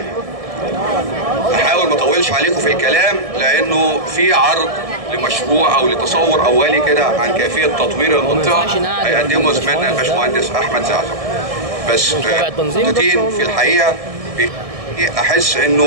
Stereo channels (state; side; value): late; left; 1.6 ms